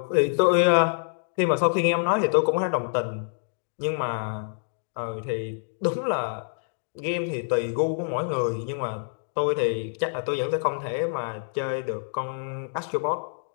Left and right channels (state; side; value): silent; right; digital silence